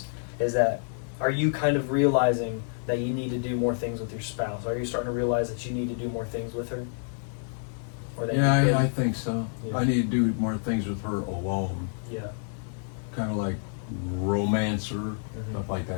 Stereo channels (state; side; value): silent; right; digital silence